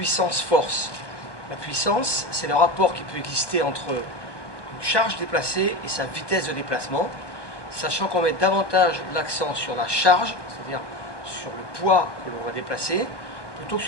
La puissance, c'est le rapport qui peut exister entre une charge déplacée et sa vitesse de déplacement, sachant qu'on met davantage l'accent sur la charge, c'est-à-dire sur le poids que l'on va déplacer, plutôt que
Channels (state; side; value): late; right; 1.1 ms